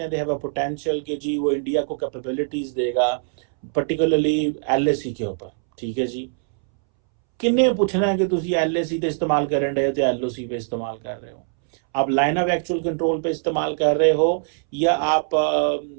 हैं दे हैव अ पोटेंशियल कि जी वो इंडिया को कैपेबिलिटीज देगा, पर्टिकुलरली एलएसी के ऊपर। ठीक है जी, किन्ने पूछना है कि तुसी एलएसी ते इस्तेमाल करन रहे हो तो एलओसी पे इस्तेमाल कर रहे हो, आप लाइन ऑफ एक्चुअल कंट्रोल पे इस्तेमाल कर रहे हो या आप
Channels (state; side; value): silent; left; 64 dB below the other